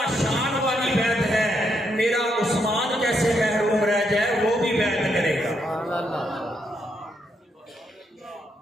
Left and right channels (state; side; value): normal; both; correlation 0.78